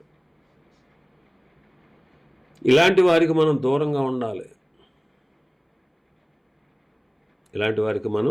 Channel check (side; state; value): both; identical; correlation 1.00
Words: ఇలాంటి వారికి మనం దూరంగా ఉండాలి. ఇలాంటి వారికి